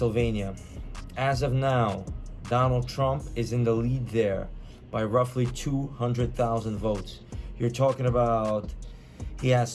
As of now, Donald Trump is in the lead there by roughly 200,000 votes. You're talking about he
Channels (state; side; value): identical; both; correlation 1.00